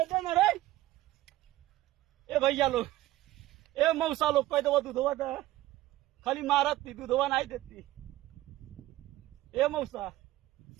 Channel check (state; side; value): quieter; left; 16.1 dB